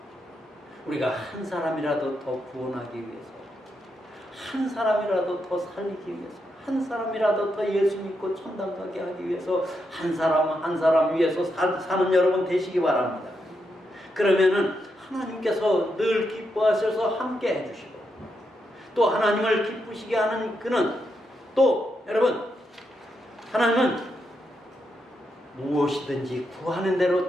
우리가 한 사람이라도 더 구원하기 위해서, 한 사람이라도 더 살리기 위해서, 한 사람이라도 더 예수 믿고 천당 가게 하기 위해서 한 사람 한 사람 위해서 사는 여러분 되시기 바랍니다. 그러면은 하나님께서 늘 기뻐하셔서 함께 해주시고, 또 하나님을 기쁘시게 하는 그는 또 여러분, 하나님은 무엇이든지 구하는 대로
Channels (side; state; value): both; normal; correlation 0.83